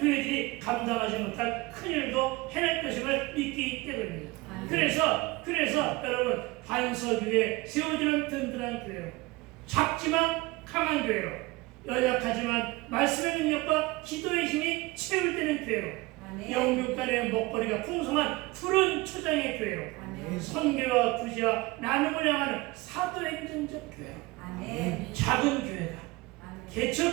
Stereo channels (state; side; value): quieter; left; 22.0 dB